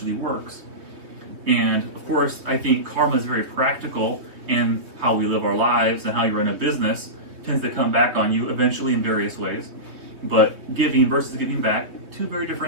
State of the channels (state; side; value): late; left; 3.2 ms